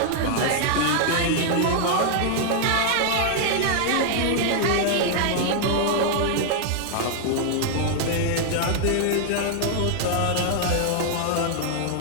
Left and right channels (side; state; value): both; different; correlation 0.00